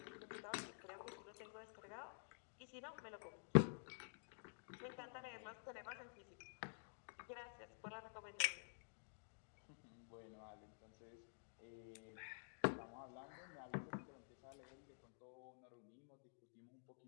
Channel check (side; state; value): right; silent; digital silence